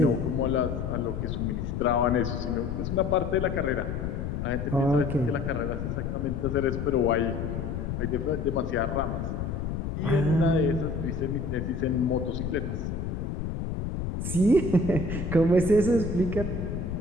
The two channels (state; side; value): noise; left; rumble, 4 dB below the sound